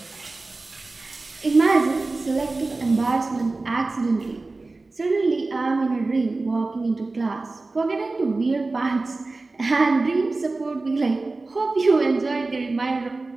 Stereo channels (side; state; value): left; quieter; 3.4 dB